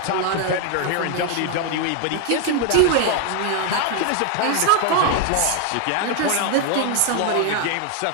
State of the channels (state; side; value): different; both; correlation 0.01